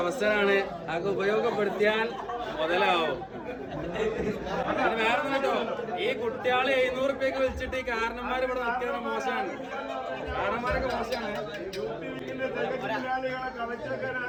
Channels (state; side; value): identical; both; correlation 1.00